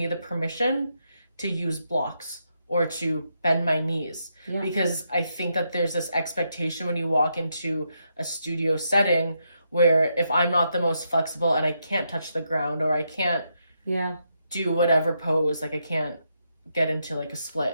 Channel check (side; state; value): both; inverted; correlation -0.81